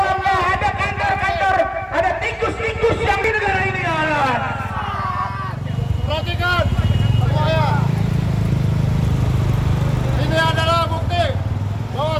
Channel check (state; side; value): identical; both; correlation 1.00